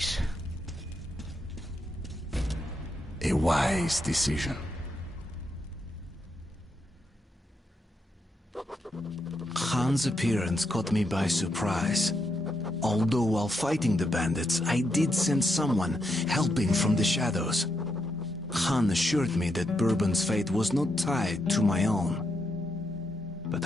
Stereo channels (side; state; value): both; normal; correlation 0.81